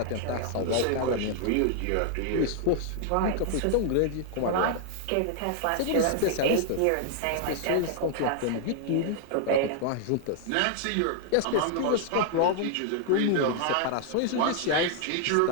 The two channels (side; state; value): both; different; correlation 0.00